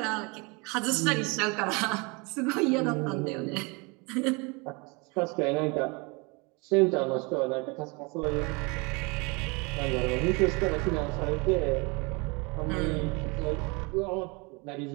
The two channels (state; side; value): quieter; left; 28.9 dB